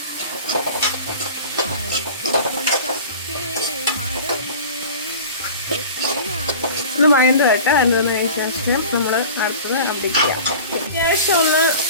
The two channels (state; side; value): inverted; both; correlation -0.39